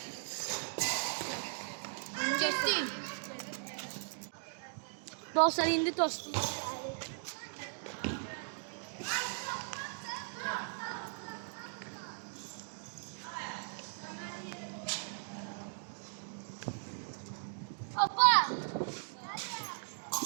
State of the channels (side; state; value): left; silent; digital silence